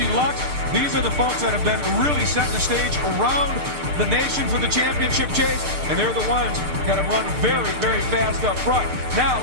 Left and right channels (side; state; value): left; late; 7.6 ms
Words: Lux. These are the folks that have been really setting the stage around the nation for the championship chase, and they're the ones that have run very, very fast up front. Now,